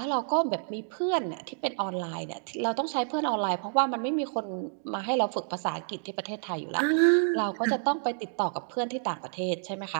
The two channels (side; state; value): left; silent; digital silence